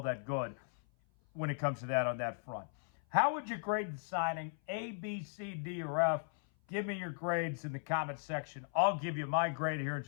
that good when it comes to that on that front. How would you grade the signing? A, B, C, D, or F? Give me your grades in the comment section. I'll give you my grade here in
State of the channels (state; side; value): silent; right; 53 dB below the other